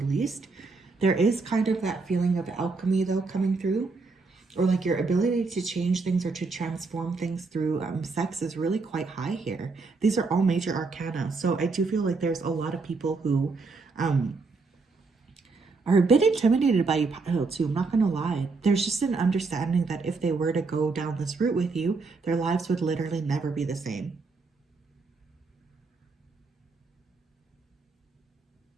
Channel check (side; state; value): left; quieter; 4.1 dB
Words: least. There is kind of that feeling of alchemy though coming through, or like your ability to change things or to transform things through sex is really quite high here. These are all major arcana. So I do feel like there's a lot of people who are a bit intimidated by you, Pile, too. I'm not going to lie. There's just an understanding that if they were to go down this route with you, their lives would literally never be the same.